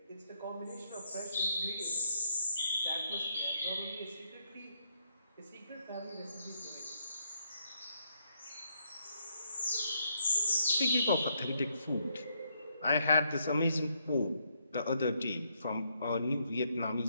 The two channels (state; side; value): inverted; both; correlation -0.75